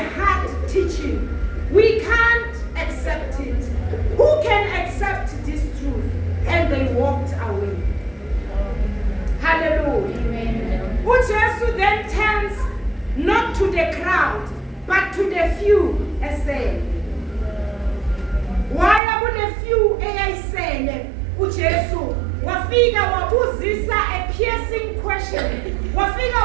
hard teaching. We can't accept it. Who can accept this truth? And they walked away. Hallelujah. Amen. uJesu then turns not to the crowd, but to the few and said, why are the few eyayisele uJesu wafika wabuzisa a piercing question. Wafika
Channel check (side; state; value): left; drops out; at 19.0 s